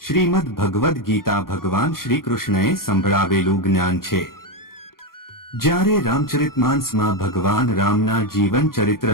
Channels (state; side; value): late; right; 0.92 ms